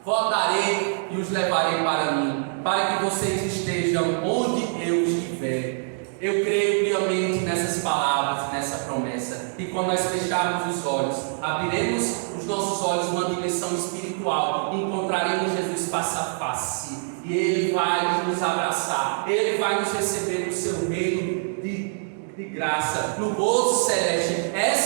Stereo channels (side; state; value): left; silent; digital silence